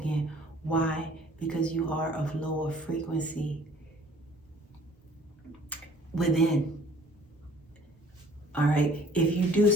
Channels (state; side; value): normal; both; correlation 0.54